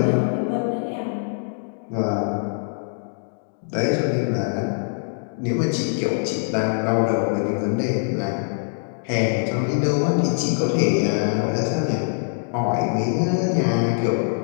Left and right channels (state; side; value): silent; right; digital silence